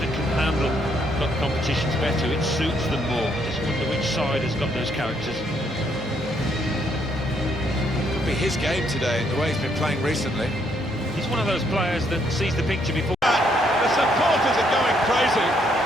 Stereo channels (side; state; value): both; normal; correlation 0.71